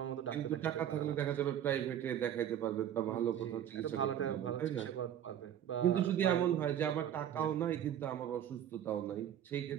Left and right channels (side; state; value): left; quieter; 10.3 dB